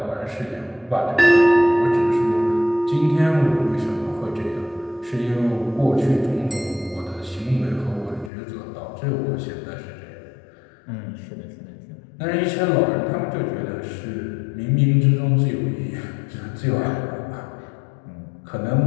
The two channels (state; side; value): drops out; right; at 8.3 s